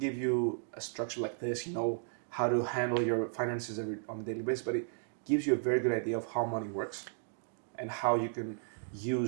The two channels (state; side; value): silent; left; digital silence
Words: you a structure like this, you know, how to handle your finances on a daily basis, but it gives you a very good idea of how money works and how you can